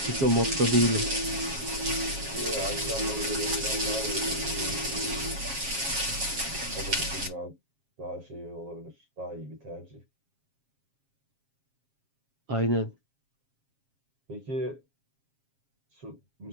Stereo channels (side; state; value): left; late; 7.4 ms